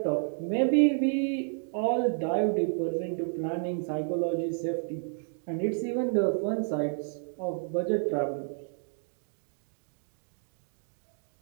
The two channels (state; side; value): silent; left; 57 dB below the other